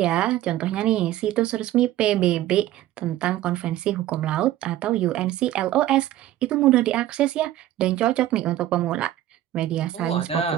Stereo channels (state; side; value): quieter; left; 13.6 dB